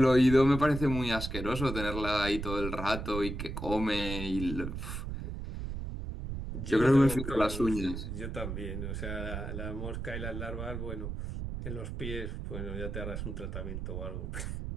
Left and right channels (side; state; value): right; noise; rumble, 5 dB below the sound